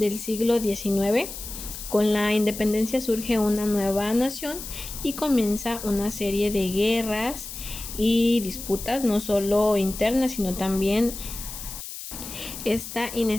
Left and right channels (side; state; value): left; noise; hiss, 10 dB below the sound